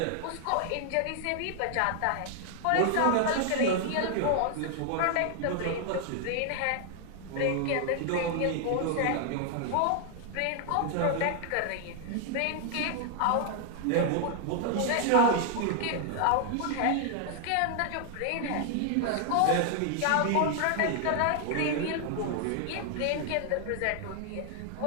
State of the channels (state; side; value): different; both; correlation 0.00